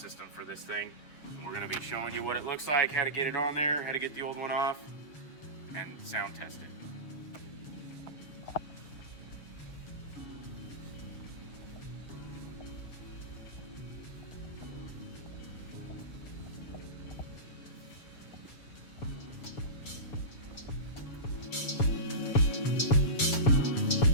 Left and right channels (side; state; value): right; late; 7.0 ms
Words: for this thing. We're going to be showing you what it looks like, how to get it on there, how to get the old one off, and sound test it.